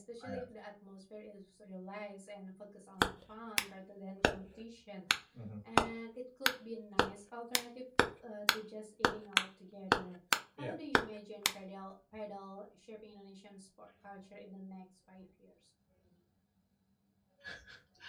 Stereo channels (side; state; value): both; identical; correlation 1.00